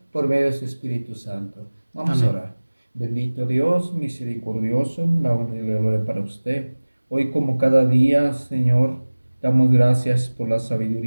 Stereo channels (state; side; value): inverted; both; correlation -1.00